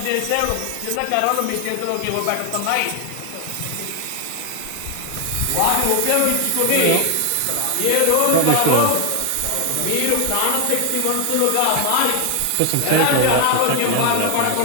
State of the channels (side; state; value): both; different; correlation 0.00